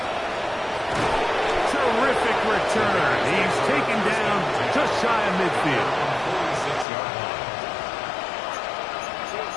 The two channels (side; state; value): right; drops out; at 6.9 s